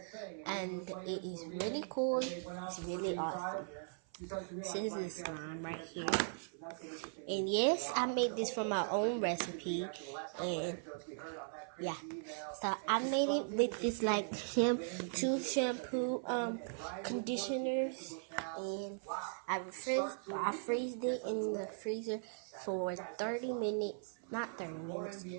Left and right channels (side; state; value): left; silent; 52 dB below the other